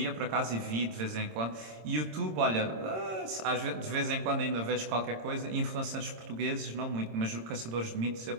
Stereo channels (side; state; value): left; late; 26 ms